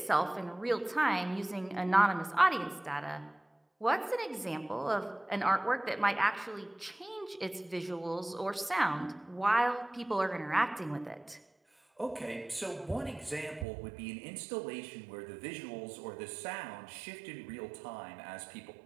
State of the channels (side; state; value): left; drops out; at 13.7 s